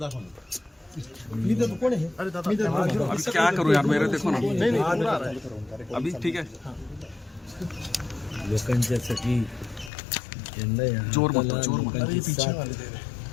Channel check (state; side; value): drops out; right; at 9.9 s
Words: अभी क्या करूं यार, मेरे देखो ना. अभी ठीक है. लोकांच्यासाठी जोर मत.